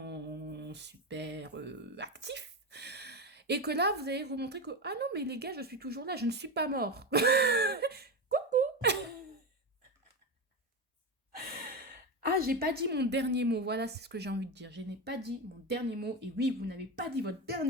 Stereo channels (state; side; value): normal; both; correlation 0.17